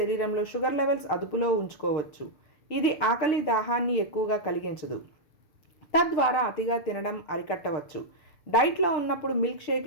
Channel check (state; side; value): late; right; 6.6 ms